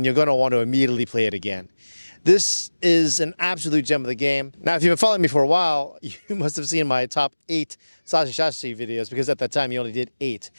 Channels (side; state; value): both; inverted; correlation -1.00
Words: you're going to want to immediately play it again. This is an absolute gem of the game. Now, if you've been following me for a while, you must have seen my top 8 Sashi videos, because at that time you only did 8.